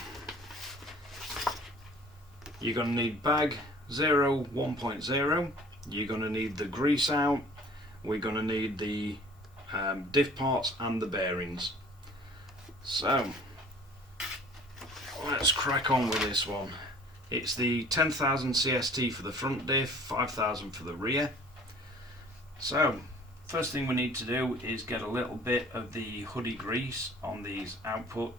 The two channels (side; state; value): both; normal; correlation 0.50